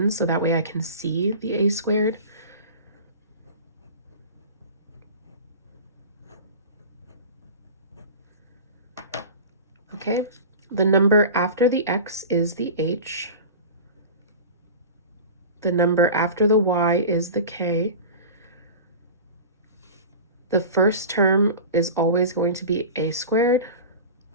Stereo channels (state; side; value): inverted; both; correlation -0.34